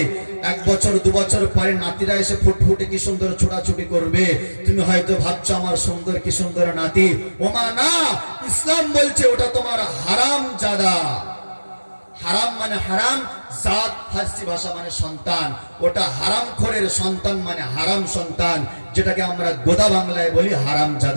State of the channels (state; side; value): inverted; both; correlation -1.00